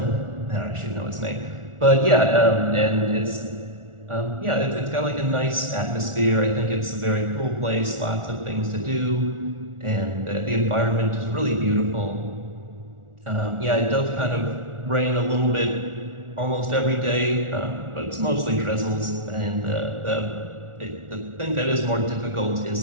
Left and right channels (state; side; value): late; left; 1.4 ms